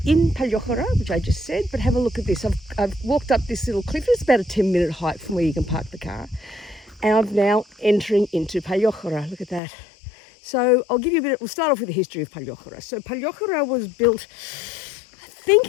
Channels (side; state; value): right; drops out; at 9.6 s